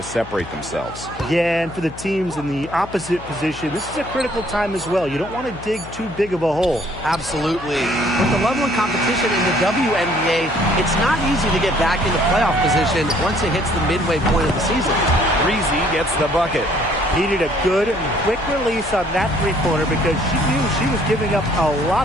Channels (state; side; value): noise; left; hum, 15 dB below the sound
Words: separate themselves. Yeah, and for the teams in the opposite position, this is a critical time as well. You don't want to dig too big of a hole. Absolutely. With the level of competition in the WNBA, it's not easy to get back into playoff position once it hits the midway point of the season. Breezy gets the bucket. Needed a good and quick release on that three-pointer because she knew she was giving up a lot